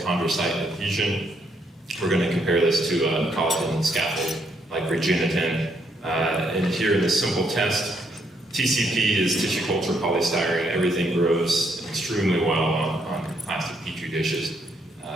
adhesion, we're going to compare this to a collagen scaffold like Regeniten. And here in this simple test, TCP is tissue culture polystyrene. Everything grows extremely well on plastic petri dishes.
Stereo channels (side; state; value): both; normal; correlation 0.73